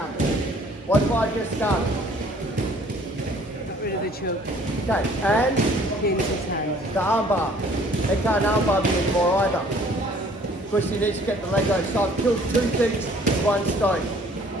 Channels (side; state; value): both; normal; correlation 0.56